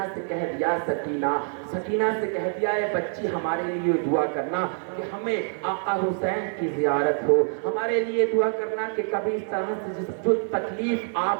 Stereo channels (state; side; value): silent; left; 61 dB below the other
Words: से कह दिया, सकीना से कह दिया, है बच्ची, हमारे लिए दुआ करना कि हमें आका हुसैन की ज़ियारत हो, हमारे लिए दुआ करना कि कभी इस तरह से जो तकलीफ